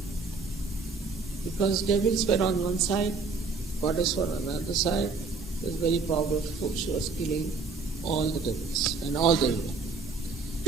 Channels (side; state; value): left; quieter; 4.2 dB